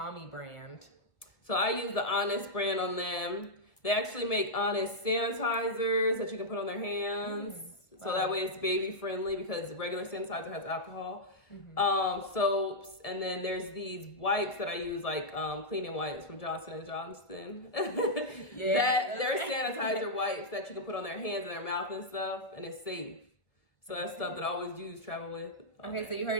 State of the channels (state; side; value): late; right; 1.3 ms